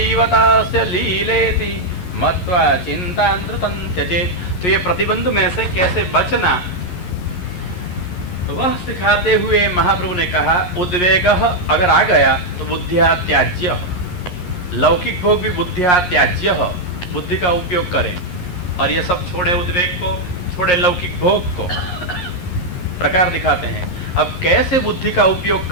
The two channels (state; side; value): late; right; 11 ms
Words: तस्य लीलेति मत्वा चिन्तान्द्रुतं त्यजेत्। तो ये प्रतिबंध में से कैसे बचना वह सिखाते हुए महाप्रभु ने कहा, उद्वेग अगर आ गया तो बुद्धिया त्याज्य, लौकिक भोग भी बुद्धिया त्याज्य, बुद्धि का उपयोग करें। और ये सब छोड़े, उद्वेग को छोड़े, लौकिक भोग को प्रकार दिखाते हैं। अब कैसे बुद्धि का उपयोग